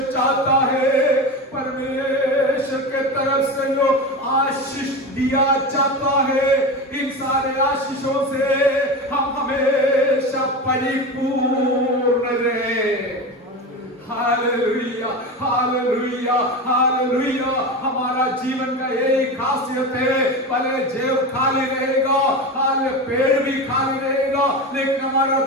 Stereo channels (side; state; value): both; normal; correlation 0.24